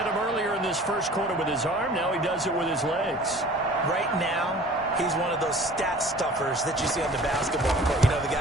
him earlier in this first quarter with his arm. Now he does it with his legs. Right now, he's one of those stat stuffers that you see on the basketball court. You know, the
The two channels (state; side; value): normal; both; correlation 0.46